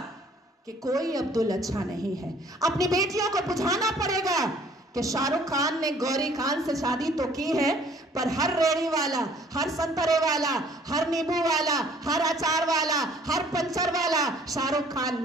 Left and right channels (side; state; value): both; normal; correlation 0.57